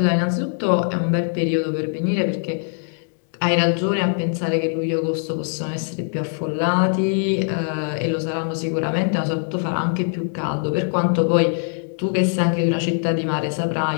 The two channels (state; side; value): silent; right; 64 dB below the other